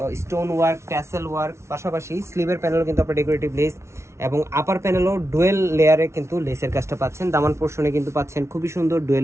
স্টোন ওয়ার্ক, ট্যাসেল ওয়ার্ক, পাশাপাশি স্লিভের প্যানেলও কিন্তু আপনার ডেকোরেটিভ লেস এবং আপার প্যানেলও ডুয়েল লেয়ারে কিন্তু লেসের কাজটা পাচ্ছেন। দামান পোর্শনে কিন্তু পাচ্ছেন খুবই সুন্দর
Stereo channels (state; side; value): late; left; 0.13 ms